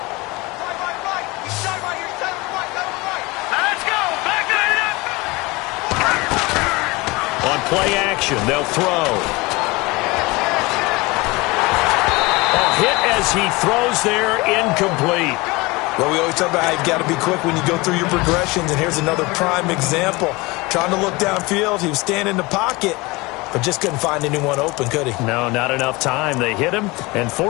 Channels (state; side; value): quieter; right; 23.6 dB